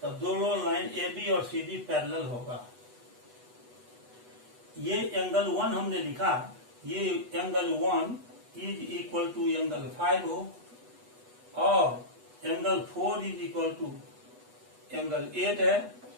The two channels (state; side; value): late; left; 8.2 ms